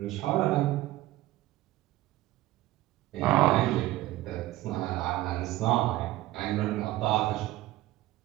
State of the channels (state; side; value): quieter; left; 16.3 dB